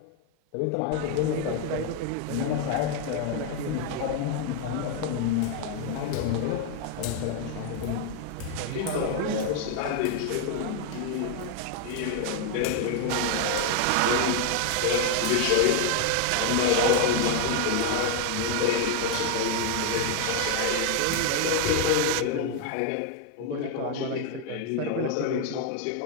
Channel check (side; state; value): both; different; correlation 0.00